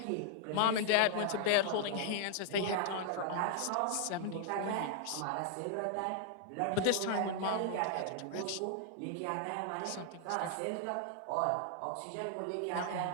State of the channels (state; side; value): different; both; correlation -0.01